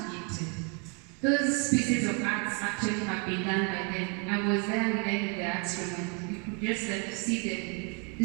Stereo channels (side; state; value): left; quieter; 35.2 dB